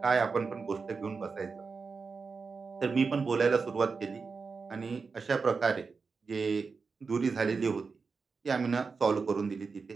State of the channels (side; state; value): left; quieter; 4.8 dB